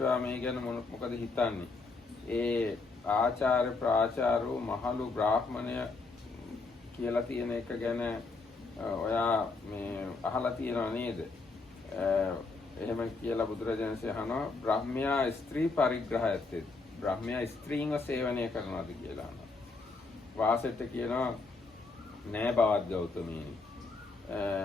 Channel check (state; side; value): quieter; right; 3.9 dB